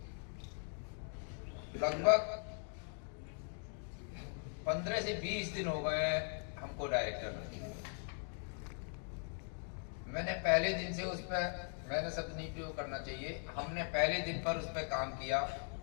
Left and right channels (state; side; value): silent; right; 51 dB below the other